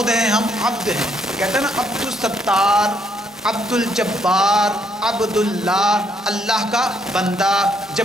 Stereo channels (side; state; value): both; normal; correlation 0.71